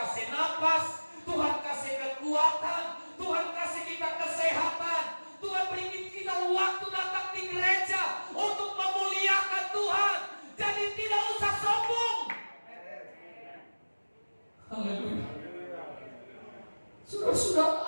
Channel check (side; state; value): both; inverted; correlation -1.00